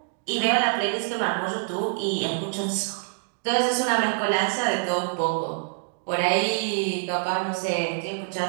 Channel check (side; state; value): left; silent; digital silence